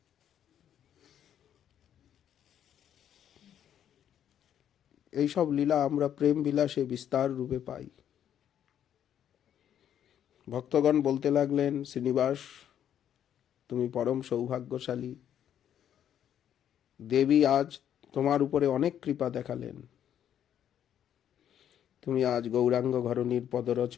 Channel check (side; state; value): right; quieter; 9.9 dB